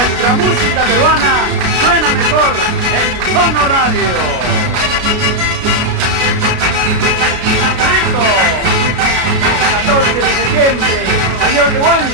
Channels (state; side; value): late; left; 33 ms